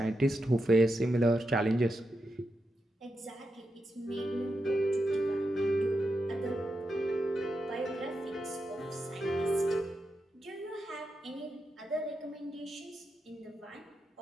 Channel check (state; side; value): normal; both; correlation 0.86